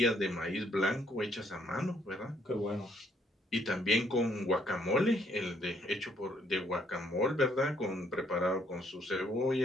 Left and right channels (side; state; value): both; normal; correlation 0.68